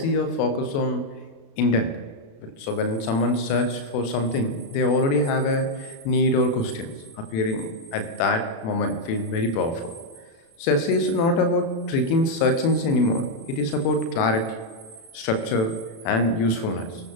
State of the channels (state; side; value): late; right; 36 ms